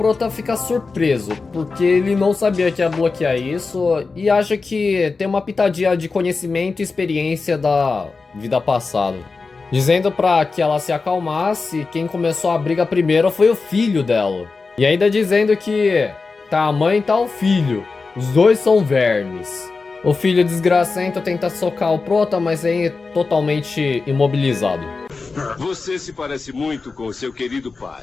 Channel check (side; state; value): right; quieter; 4.2 dB